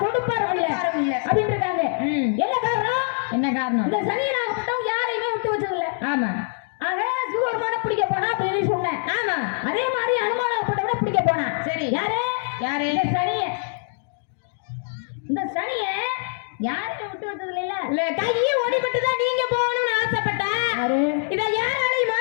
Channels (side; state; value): right; silent; 62 dB below the other